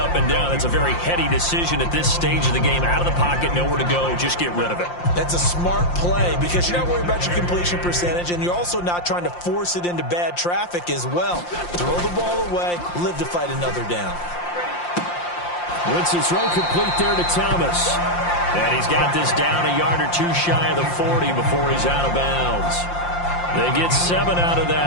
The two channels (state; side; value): late; right; 5.7 ms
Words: and down. It's a very heady decision at this stage of the game. Out of the pocket, nowhere to go. Just get rid of it. That's a smart play because you're not worried about your completion percentage, and you're also not trying to force it into bad traffic as well. Throw the ball away, live to fight another down. Wentz's throw complete there to Thomas. And he's got this down a yard or 2 shy of the 40 before he's out of bounds. They get 7 out of